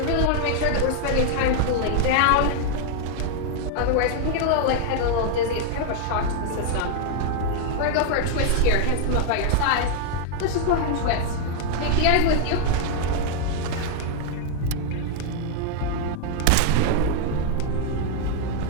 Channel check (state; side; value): different; both; correlation 0.00